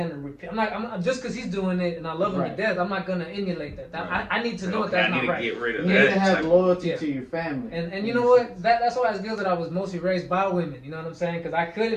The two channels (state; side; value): identical; both; correlation 1.00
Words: repeat. I'm just because he's doing it and I love him Right. to death. I'm not gonna emulate that. Right. I need to know Okay, that that's I need not to right. get rid of you that. need to have type- loyalty Yeah. to your family. And you know what? That's why it's good that I was mostly raised by women. You know what I'm saying? Because I